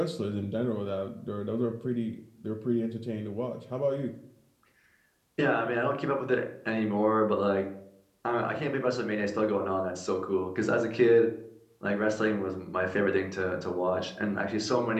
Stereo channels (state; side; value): identical; both; correlation 1.00